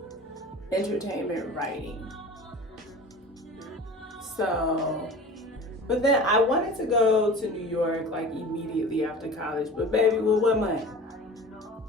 entertainment writing. So, but then I wanted to go to New York like immediately after college, but baby, with what money?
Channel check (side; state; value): both; normal; correlation 0.38